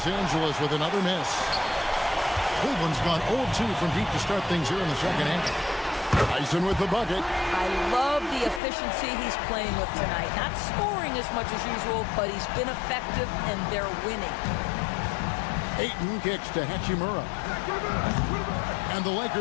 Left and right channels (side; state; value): right; drops out; at 8.6 s